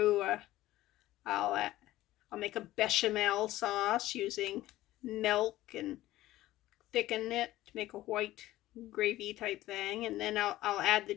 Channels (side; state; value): right; quieter; 15.8 dB